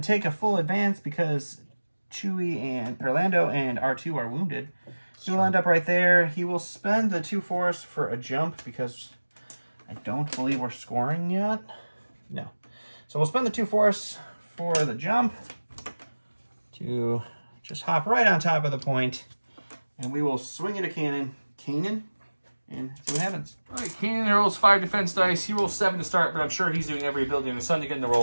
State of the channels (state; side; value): inverted; both; correlation -1.00